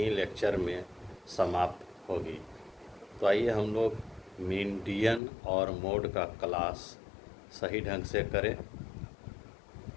लेक्चर में समाप्त होगी। तो आइए हम लोग मीडियन और मोड का क्लास सही ढंग से करें।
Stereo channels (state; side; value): drops out; right; at 5.2 s